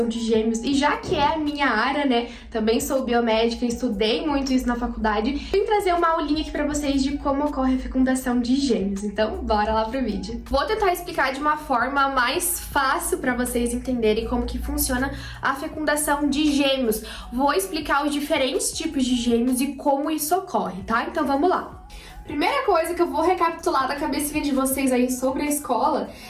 de gêmeos, e já que é a minha área, né, também sou biomédica, estudei muito isso na faculdade, vim trazer uma aulinha aqui pra vocês de como ocorre a fecundação de gêmeos. Então, bora lá pro vídeo. Vou tentar explicar de uma forma mais fácil pra vocês entenderem como que funciona a fecundação de gêmeos. Vou explicar os diferentes tipos de gêmeos e como isso ocorre, tá? Então, vamos lá. Primeira coisa que eu vou recapitular da cabecinha de vocês aí sobre a escola,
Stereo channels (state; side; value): identical; both; correlation 1.00